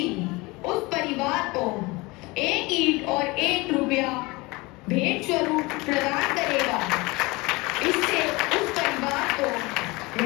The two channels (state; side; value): quieter; right; 23.8 dB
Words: उस परिवार को 1 ईंट और 1 रुपया भेंट स्वरूप प्रदान करेगा। इससे उस परिवार को